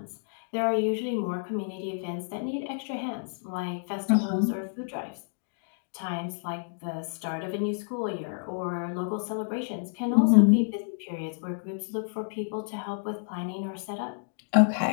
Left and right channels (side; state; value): right; silent; digital silence